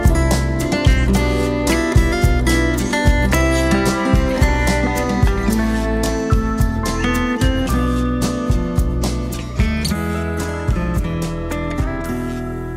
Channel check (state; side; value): identical; both; correlation 1.00